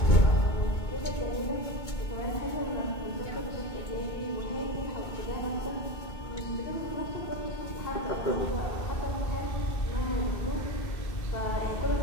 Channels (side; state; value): right; late; 2.2 ms